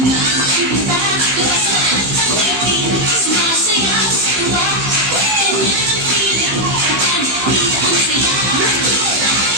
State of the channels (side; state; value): left; late; 15 ms